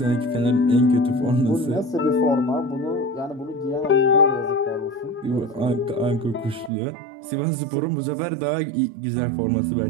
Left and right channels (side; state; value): left; drops out; at 6.7 s